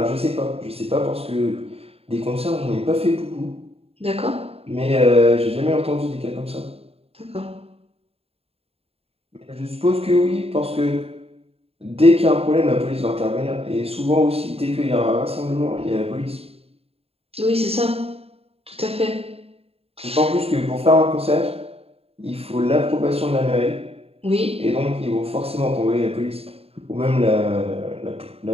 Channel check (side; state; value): left; late; 0.29 ms